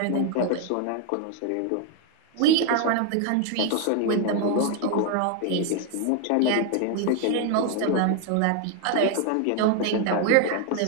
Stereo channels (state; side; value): different; both; correlation 0.00